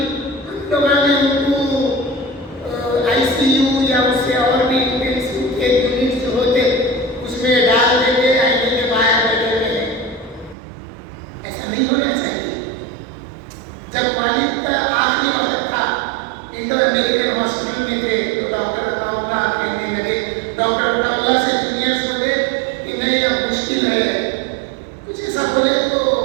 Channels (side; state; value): left; drops out; at 10.6 s